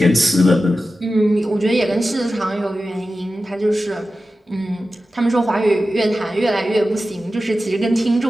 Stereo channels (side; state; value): both; normal; correlation 0.93